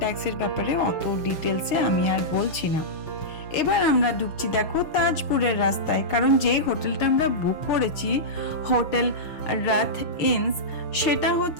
ট্যাক্সের ব্যাপারে অত ডিটেলসে আমি আর বলছি না। এবার আমরা ঢুকছি দেখো তাজপুরের রাস্তায়, কারণ যে হোটেলটা আমরা বুক করেছি হোটেল রাত ইনস, সেটা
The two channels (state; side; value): late; right; 6.5 ms